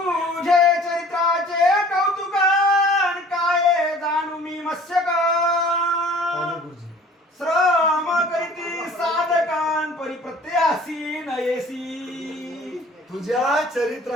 चरित्राचे कौतुकान काय जाणू मी मत्स्यक. श्रम करीती साधकान परिप्रत्यासी नयेसी. तुझ्या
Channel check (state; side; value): normal; both; correlation 0.49